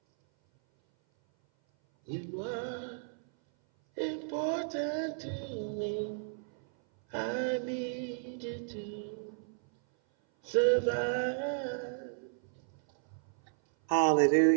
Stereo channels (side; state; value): left; silent; 56 dB below the other